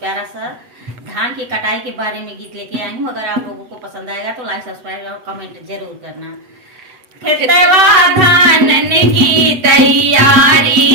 सा धान की कटाई के बारे में गीत लेके आई हूँ। अगर आप लोगों को पसंद आएगा तो लाइक, सब्सक्राइब और कमेंट जरूर करना। खेतवा धान की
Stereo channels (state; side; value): late; left; 8.0 ms